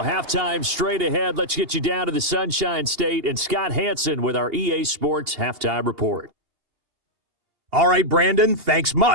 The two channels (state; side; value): late; left; 2.8 ms